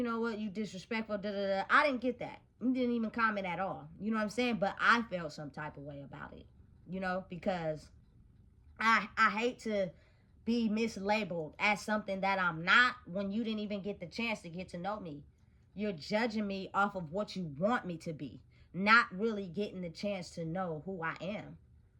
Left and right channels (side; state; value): both; identical; correlation 1.00